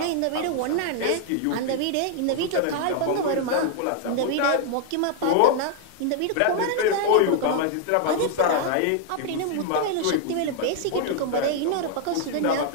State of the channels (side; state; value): both; different; correlation 0.00